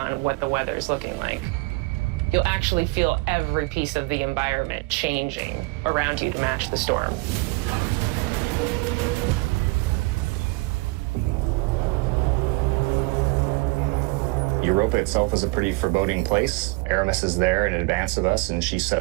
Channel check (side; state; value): left; quieter; 24.8 dB